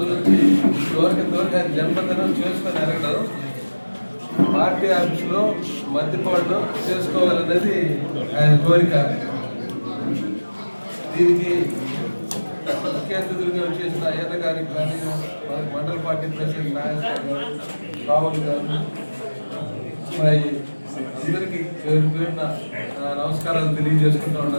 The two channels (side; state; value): both; inverted; correlation -1.00